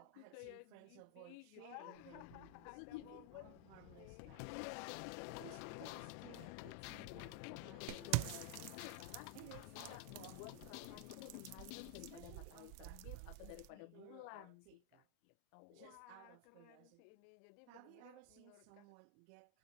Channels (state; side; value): different; both; correlation 0.01